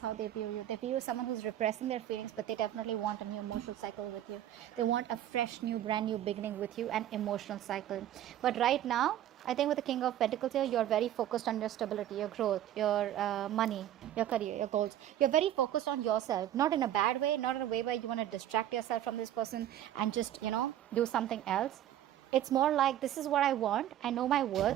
how they view you. They view you as someone who's repressing their feelings, but they definitely want a new emotional cycle with you. They want a fresh, new, brand new beginning with you, an emotional cycle. But right now, I think with the King of Pentacles here, you're very focused on your stability, your growth, your money, your career, your goals. You're very focused on yourself, not in a bad way, not in a way where you want to distract yourself from this person and just, do something else. It's more like, this is what I want. I know my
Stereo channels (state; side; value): quieter; left; 11.9 dB